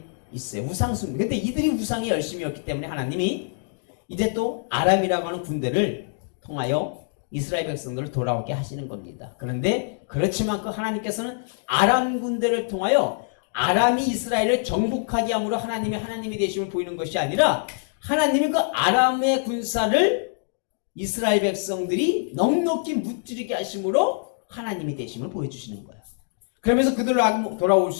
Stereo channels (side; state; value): right; silent; digital silence